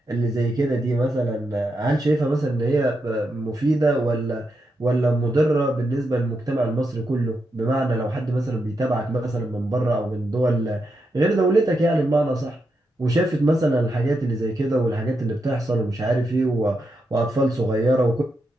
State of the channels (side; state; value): both; normal; correlation 0.84